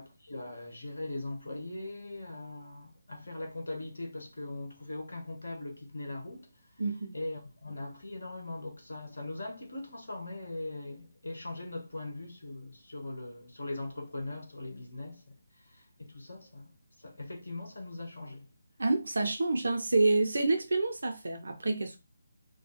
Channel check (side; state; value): both; inverted; correlation -0.92